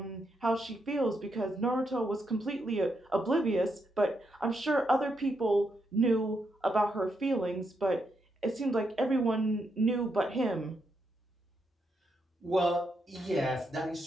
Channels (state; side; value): normal; both; correlation 0.81